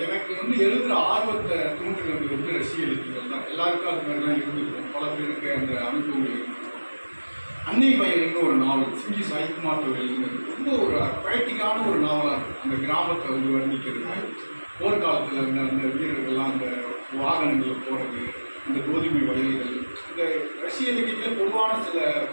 எனக்கு வந்து எழுதுகிற ஆர்வத்தை தூண்டுறது வந்து ரஷ்ய இலக்கியங்கள் தான். எல்லாருக்கும் அது மாதிரி தான் இருந்திருக்கும். பல பேருக்கு அந்த அனுபவங்கள் இருந்திருக்கும். அன்னை வயல்னு ஒரு நாவல் சிங்கி சாய்குமார் எழுதுனது ரொம்ப ஒரு பொயட்டிக்கான ஒரு நாவலாக இருக்கும். அந்த கிராமத்தை வந்து வர்ணிக்கிறது, போர்க்காலத்தில் அந்த வீரர்கள்லாம் அந்த வாகனங்களில் போகிறது, அந்த கோதுமை வயல்கள், இந்த ரஷ்ய இலக்கியத்தில் பொதுவான சில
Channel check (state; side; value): inverted; both; correlation -1.00